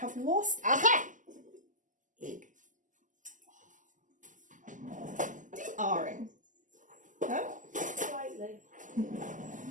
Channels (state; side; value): late; left; 0.37 ms